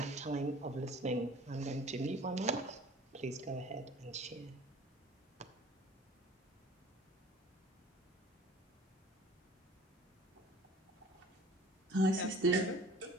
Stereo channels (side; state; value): both; normal; correlation 0.48